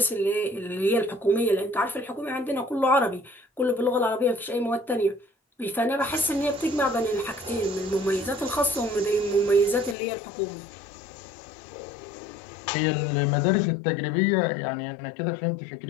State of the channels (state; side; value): drops out; right; at 10.0 s